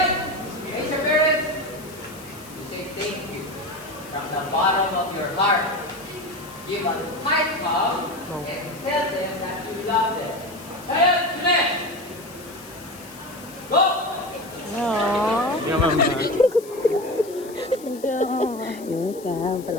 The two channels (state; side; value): noise; left; hiss, 19 dB below the sound